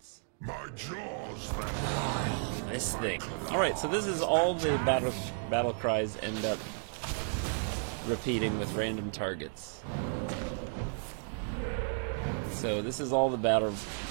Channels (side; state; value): left; silent; 56 dB below the other